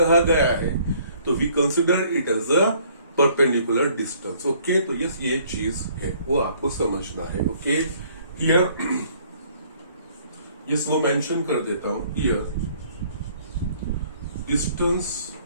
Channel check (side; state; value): both; inverted; correlation -0.60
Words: गया है तो we consider it as a perpendicular distance. Okay, तो यस ये चीज है, वो आपको समझना है। ओके, हियर यस वो मेंशन कर देता हूं, here distance